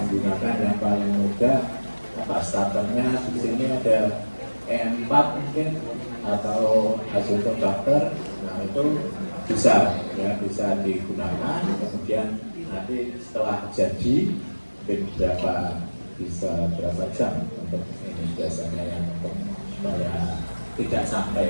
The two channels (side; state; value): both; inverted; correlation -1.00